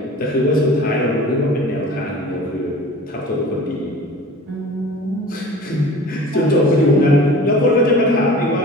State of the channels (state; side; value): normal; both; correlation 0.41